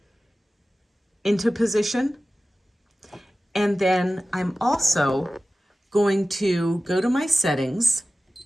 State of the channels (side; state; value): both; normal; correlation 0.96